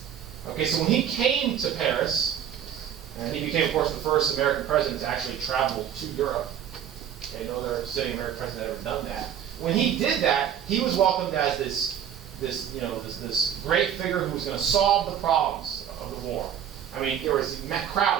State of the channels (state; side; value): quieter; left; 9.4 dB